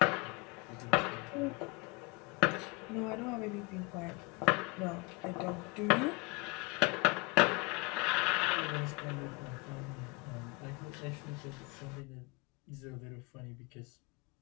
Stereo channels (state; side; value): quieter; right; 28.2 dB